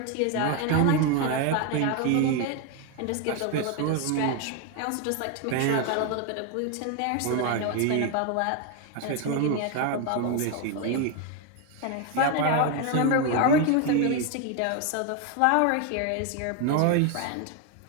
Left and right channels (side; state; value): both; different; correlation 0.01